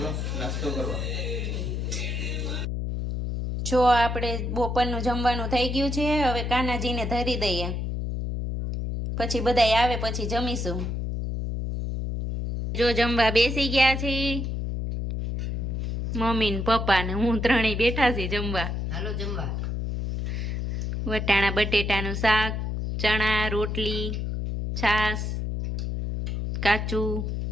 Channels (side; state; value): left; noise; hum, 2 dB below the sound